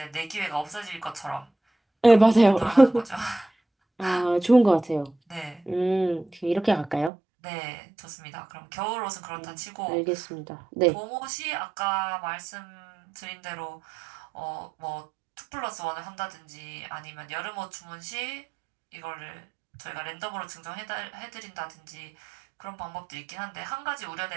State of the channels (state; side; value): drops out; left; at 7.1 s